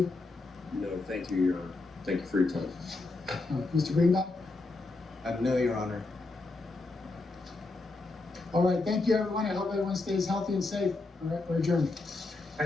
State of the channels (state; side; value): quieter; right; 3.3 dB